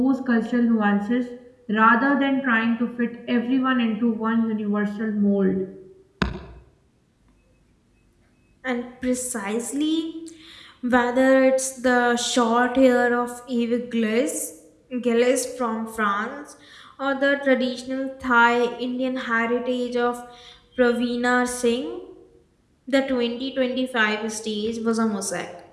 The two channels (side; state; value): both; identical; correlation 1.00